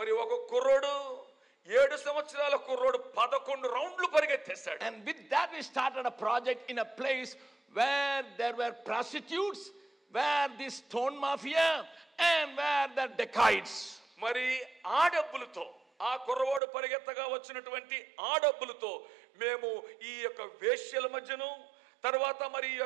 ఒక కుర్రోడు 7 సంవత్సరాల కుర్రోడు 11 రౌండ్లు పరిగెత్తేశాడు. And with that we started a project in a place where there were prostitutes, where the stone mafia, and where the dacoits. మరి ఆ డబ్బులతో, ఆ కుర్రవాడు పరిగెత్తగా వచ్చినటువంటి ఆ డబ్బులతో మేము ఈ యొక్క వేశ్యల మధ్యను, తర్వాత మరి ఈ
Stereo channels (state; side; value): drops out; left; at 16.6 s